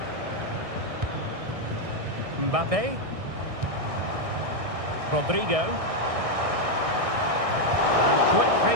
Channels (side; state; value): left; late; 1.6 ms